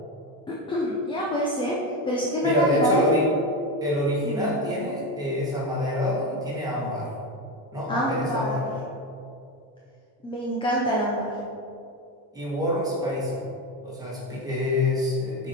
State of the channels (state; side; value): normal; both; correlation 0.17